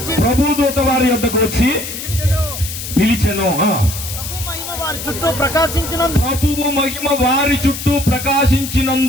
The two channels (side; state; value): left; noise; hiss, 8 dB below the sound